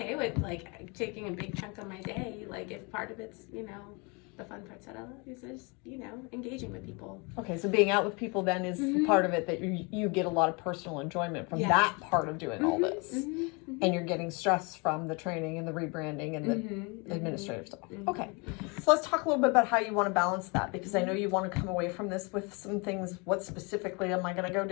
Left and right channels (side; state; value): right; quieter; 30.5 dB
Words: with like taking a big chunk of my day. Like if part of it's the fun parts that I love is just engaging with people. Okay, so being out with people then is part of it that you get a lot of personal enjoyment from that part of doing all this. And you're getting stress from the training and the rebranding and the administrative stuff. Okay, so let's talk a little bit about how you want to balance that, because I know you want to come away from this with some things. What specifically am I going to go